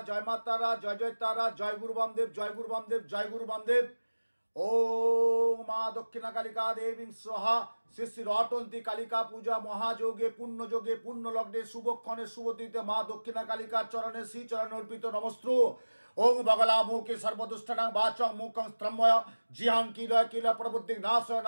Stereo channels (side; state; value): both; inverted; correlation -1.00